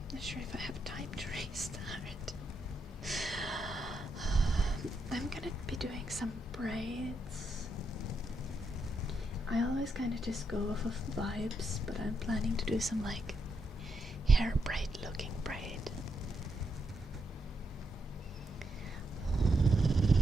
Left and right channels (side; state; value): both; normal; correlation 0.81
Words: not sure if I have time to restart. I'm gonna be doing some braids. I always kind of just go off of vibes, but I'm planning to do some like hair braid looking braid.